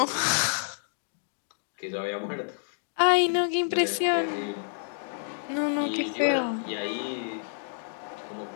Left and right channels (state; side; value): silent; right; digital silence